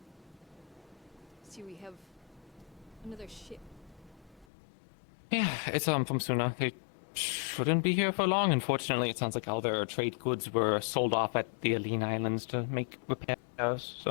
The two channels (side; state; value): right; drops out; at 4.5 s